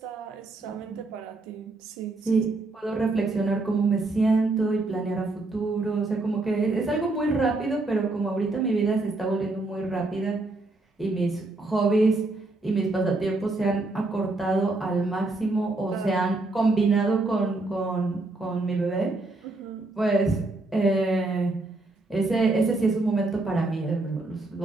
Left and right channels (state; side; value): quieter; left; 3.1 dB